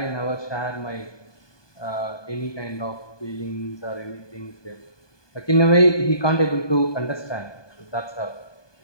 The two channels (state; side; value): late; right; 1.2 ms